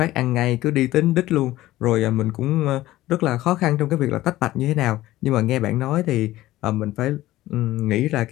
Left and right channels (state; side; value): quieter; right; 16.2 dB